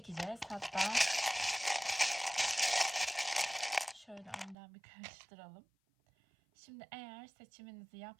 Hatta şöyle önden bir karıştıralım. Şimdi eğer seçiminizi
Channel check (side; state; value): left; drops out; at 4.5 s